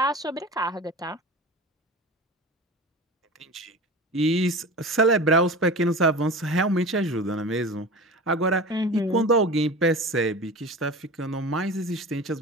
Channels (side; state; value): both; normal; correlation 0.33